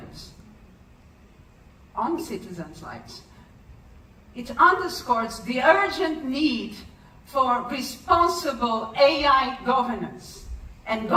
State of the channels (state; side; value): identical; both; correlation 1.00